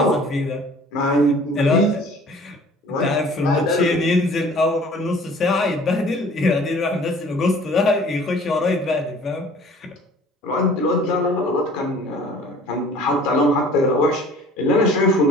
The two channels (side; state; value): both; normal; correlation 0.50